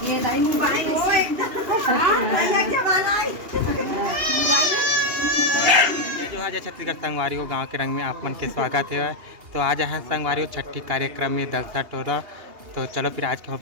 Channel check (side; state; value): left; late; 2.8 ms